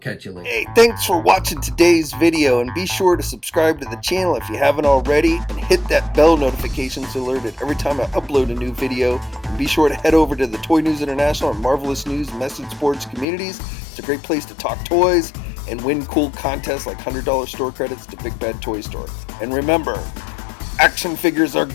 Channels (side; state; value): right; drops out; at 13.2 s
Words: you later. Hey, thanks for watching today's video, and be sure to subscribe to the channel if you haven't already, and hit that bell notification so alerted every time I upload a new video. And be sure to head over to the Toy News International and Marvelous News message boards communities. It's a great place to talk toys and win cool contests like $100 store credits to Big Bad Toy Store. And remember, action figures are